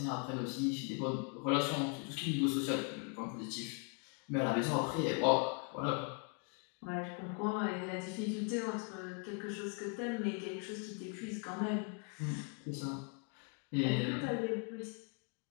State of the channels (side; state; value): right; quieter; 37.3 dB